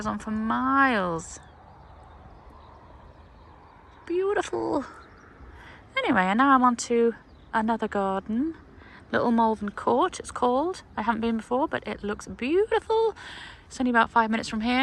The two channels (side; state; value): both; identical; correlation 1.00